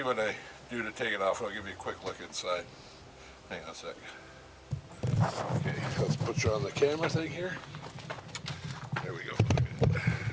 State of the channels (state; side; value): identical; both; correlation 1.00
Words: what I do to take it off. I'll give you a quick look inside. Hang on a sec. Okay, let's put you on the camera thing here. There we go.